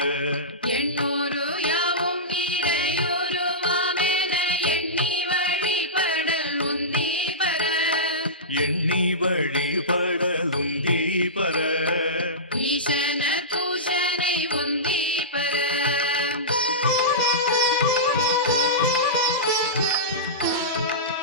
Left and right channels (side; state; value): both; normal; correlation -0.19